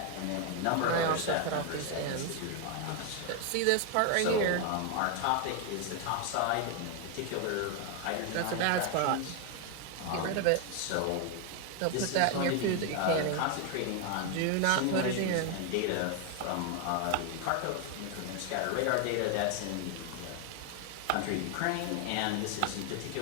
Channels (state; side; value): different; both; correlation 0.01